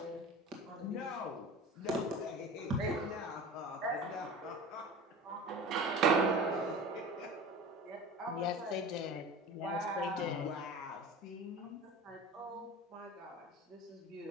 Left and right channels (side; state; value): both; normal; correlation 0.35